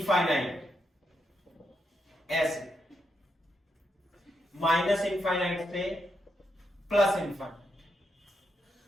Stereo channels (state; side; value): normal; both; correlation 0.82